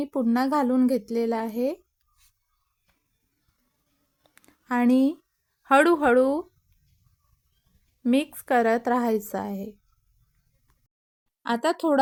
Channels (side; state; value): both; identical; correlation 1.00